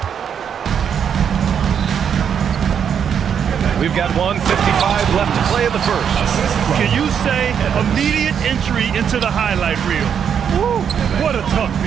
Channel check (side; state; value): left; quieter; 7.9 dB